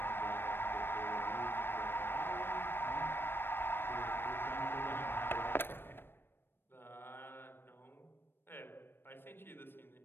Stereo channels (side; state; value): right; late; 0.10 ms